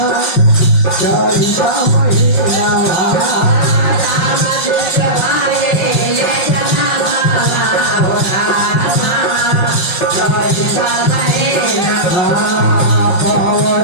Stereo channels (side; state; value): right; late; 5.5 ms